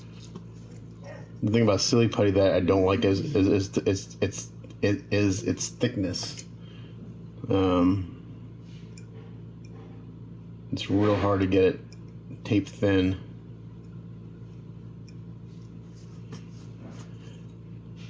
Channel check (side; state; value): both; identical; correlation 1.00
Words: the thing about silly putty that I don't like is its thickness. It's real hard to get it tape thin.